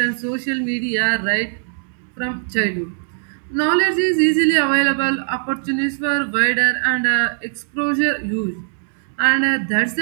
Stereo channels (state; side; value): silent; left; digital silence